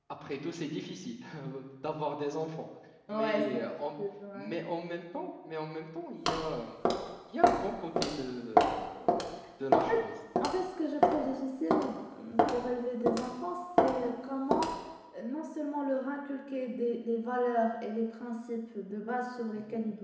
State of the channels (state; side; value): identical; both; correlation 1.00